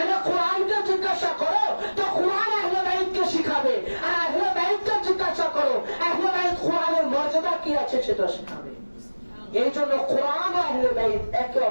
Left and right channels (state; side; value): inverted; both; correlation -1.00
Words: কোরআনকে জিজ্ঞাসা করো তো কোরআন আহলে বাইতকে শিখাবে, আর আহলে বাইতকে জিজ্ঞাসা করো আহলে বাইত কোরআনের মর্যাদা কি আছে সেটা শিখাবে। এই জন্য কোরআন ও আহলে বাইত একে